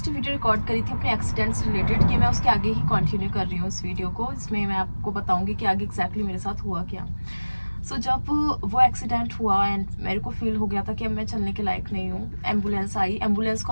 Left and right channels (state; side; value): inverted; both; correlation -1.00